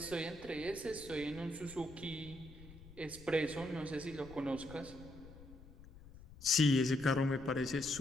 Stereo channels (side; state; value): left; noise; rumble, 18 dB below the sound